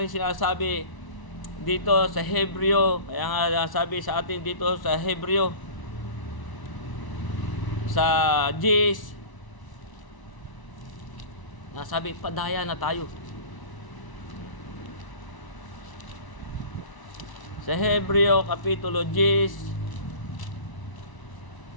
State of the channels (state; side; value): late; right; 1.0 ms